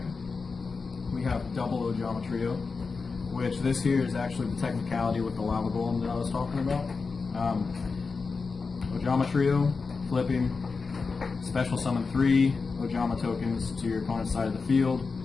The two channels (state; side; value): quieter; right; 4.6 dB